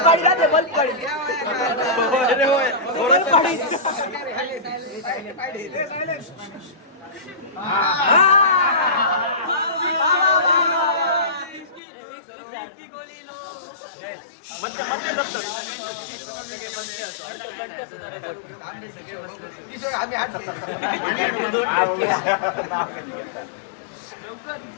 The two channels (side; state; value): right; drops out; at 11.8 s